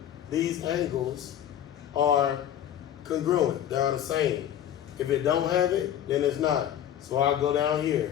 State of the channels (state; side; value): quieter; right; 10.6 dB